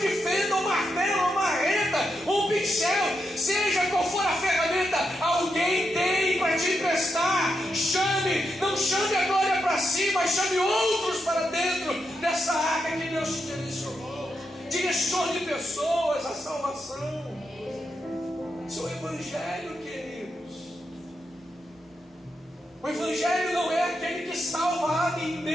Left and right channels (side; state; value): both; normal; correlation 0.84